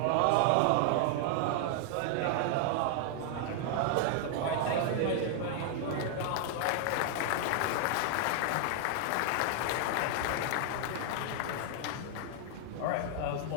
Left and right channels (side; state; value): both; different; correlation 0.00